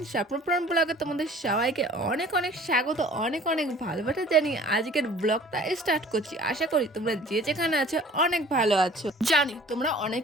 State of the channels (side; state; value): both; normal; correlation 0.49